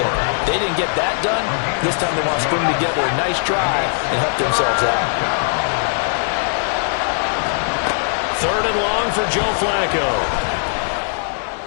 They didn't get that done. This time they want to string together a nice drive and help themselves out. 3rd and long for Joe Flacco.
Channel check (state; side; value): silent; right; digital silence